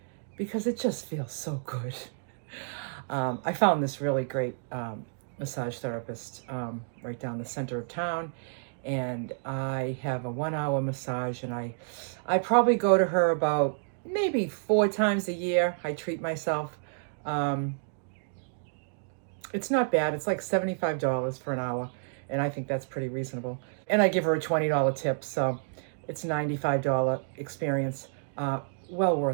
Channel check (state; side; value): silent; left; digital silence